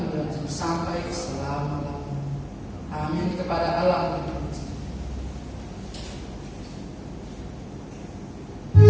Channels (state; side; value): identical; both; correlation 1.00